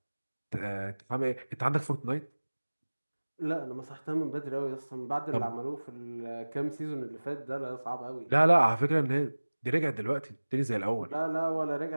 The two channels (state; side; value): inverted; both; correlation -1.00